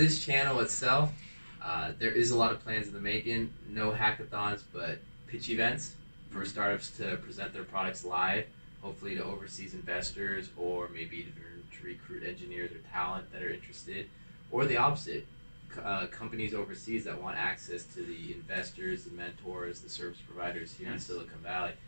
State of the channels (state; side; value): inverted; both; correlation -1.00